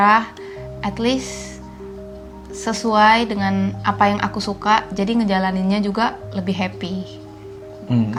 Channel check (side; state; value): both; identical; correlation 1.00